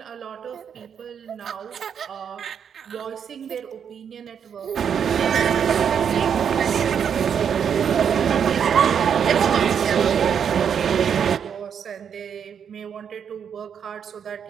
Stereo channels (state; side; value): quieter; left; 7.7 dB